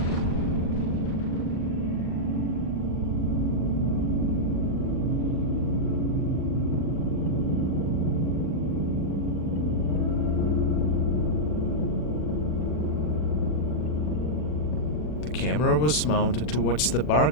The camera was mounted towards the bar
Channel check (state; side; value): late; right; 40 ms